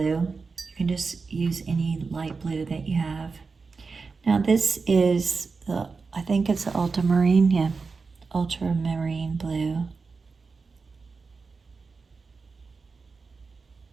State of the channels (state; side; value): quieter; left; 4.6 dB